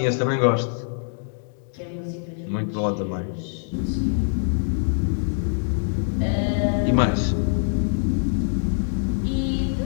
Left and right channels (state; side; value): silent; right; digital silence